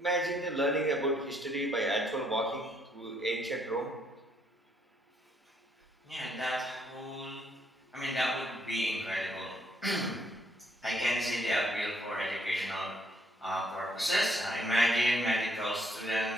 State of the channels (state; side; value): normal; both; correlation 0.70